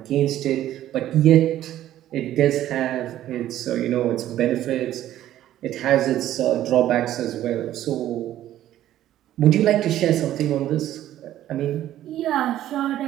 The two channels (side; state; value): left; quieter; 12.8 dB